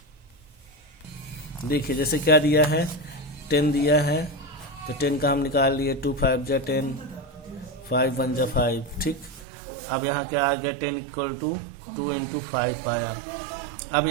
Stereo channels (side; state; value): left; drops out; at 9.5 s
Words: देखिए जैसे क्या दिया है 10 दिया है तो 10 का हम निकाल लिए। 2 5 जा 10, 5 1 जा 5। ठीक, अब यहाँ क्या आ गया 10 इक्वल टू 2 इंटू 5 आया। अब